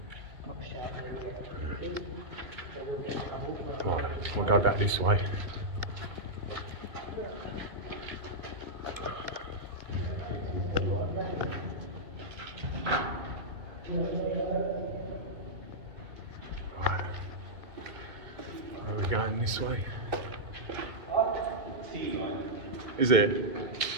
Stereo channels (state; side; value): late; left; 2.1 ms